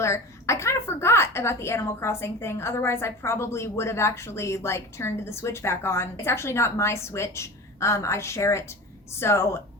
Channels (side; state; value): both; normal; correlation 0.32